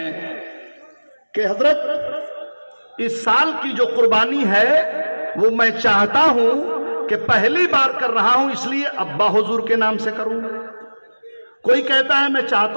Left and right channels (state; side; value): inverted; both; correlation -1.00